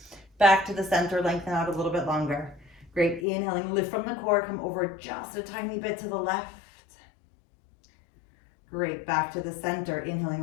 Back to the center, lengthen out a little bit longer. Great, inhaling, lift from the core, come over just a tiny bit to the left. Great, back to the center,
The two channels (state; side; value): drops out; right; at 3.2 s